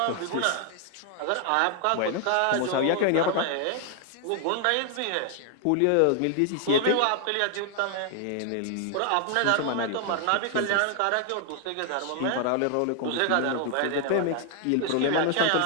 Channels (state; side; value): different; both; correlation 0.00